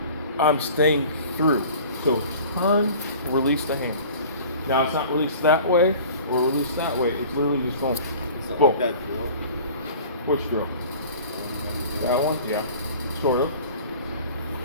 I'm staying through. So turn, release the hand. Now it's not released that way or released that way. It's literally just going. It's not boom. like that drill. Which drill? That one? Yeah, sort of.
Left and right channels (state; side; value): inverted; both; correlation -0.44